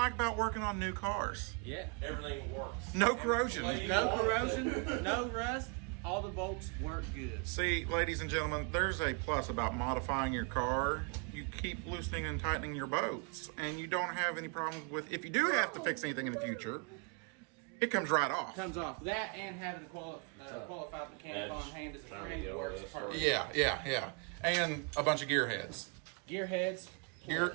about working on new cars. Yeah. Everything works. No corrosion. No corrosion, no rust. All the bolts work good. See, ladies and gentlemen, there's a plus about modifying your car. You keep loosening and tightening your bolts, and you don't have any problems with, if you do have to fix anything in the future, it comes right off. Comes off. That and having a qualified mechanic on hand is a trying to great get over works this perfect. Yeah. And a bunch of gear heads. Gear heads.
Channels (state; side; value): quieter; left; 34.1 dB